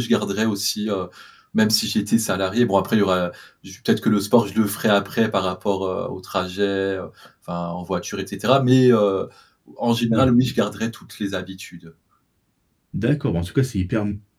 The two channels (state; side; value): identical; both; correlation 1.00